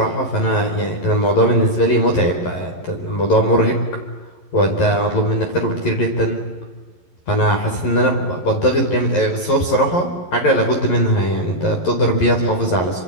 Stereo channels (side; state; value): right; late; 11 ms